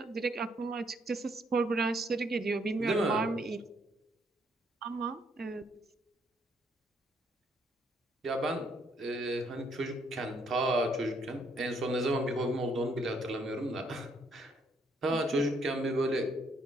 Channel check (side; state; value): both; normal; correlation 0.70